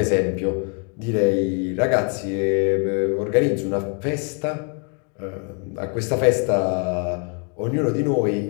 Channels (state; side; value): quieter; right; 39.9 dB